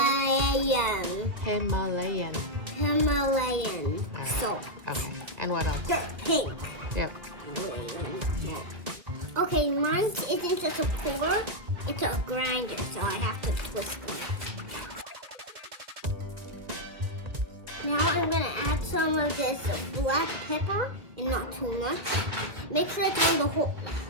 Himalayan. Himalayan All right. salt. Okay. And what else? Dark pink. Yep. Himalayan salt. Okay, mine isn't just a pour, it's a grinder, so I have to twist it. Now I'm gonna add some of this black pepper, and not too much. Make sure it's on the whole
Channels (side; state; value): left; late; 1.7 ms